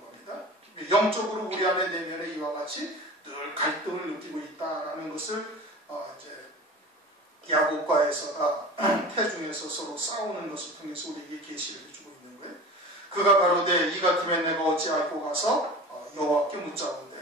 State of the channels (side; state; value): both; normal; correlation 0.36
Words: 겁니다. 영적으로 우리 안에 내면에 이와 같이 늘 갈등을 느끼고 있다는 것을 이제 야곱과 에서가 태중에서 서로 싸우는 것을 통해서 우리에게 계시를 해주고 있는 거예요. 그가 가로되 이 같으면 내가 어찌 알고 가서 여호와께 묻자온대.